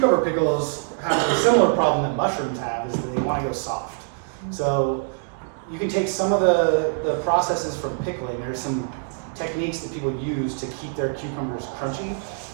pickles, have a similar problem that mushrooms have, is that they want to go soft. So you can take some of the processes from pickling. There's some techniques that people use to keep their cucumbers crunchy.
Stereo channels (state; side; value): silent; left; 63 dB below the other